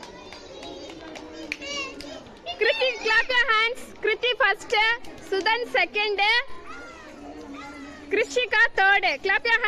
Kriti, clap your hands. Kriti first, Sudan second, Krishika third. Clap your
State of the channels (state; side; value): identical; both; correlation 1.00